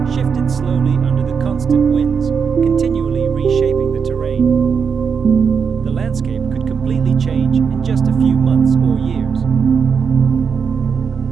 shifted slowly under the constant winds, continually reshaping the terrain. The landscape could completely change in just a few months or years.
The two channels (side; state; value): left; quieter; 6.3 dB